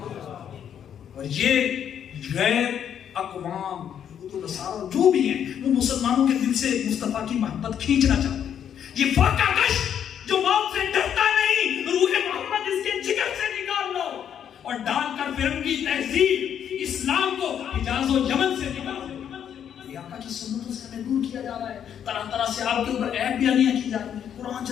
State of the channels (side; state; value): right; quieter; 9.0 dB